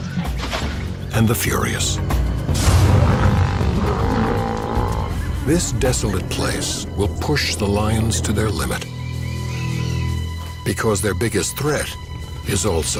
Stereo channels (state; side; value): identical; both; correlation 1.00